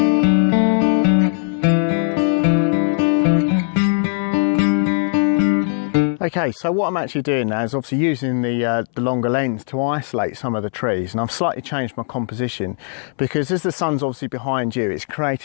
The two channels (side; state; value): right; silent; 64 dB below the other